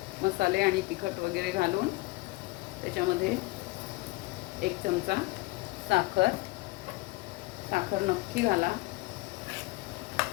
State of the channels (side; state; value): right; quieter; 21.8 dB